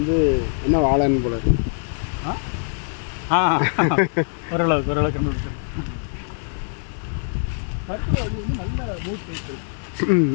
என்ன வாழைன்னு போல இருக்கு. ஓரளவுக்கு கண்டுபிடிச்சிருக்கோம். கருத்து அது வந்து நல்ல மூட் சைக்கிள்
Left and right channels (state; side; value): silent; right; digital silence